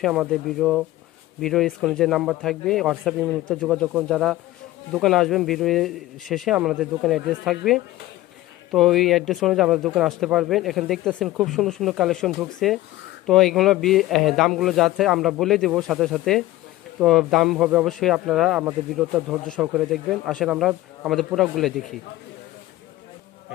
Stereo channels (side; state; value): right; quieter; 16.6 dB